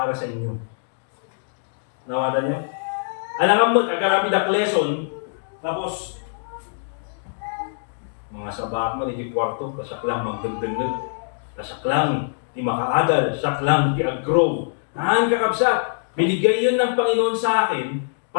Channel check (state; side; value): silent; right; digital silence